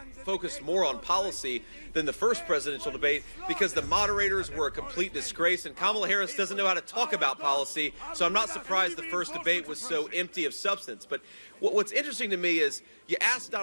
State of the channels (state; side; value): inverted; both; correlation -1.00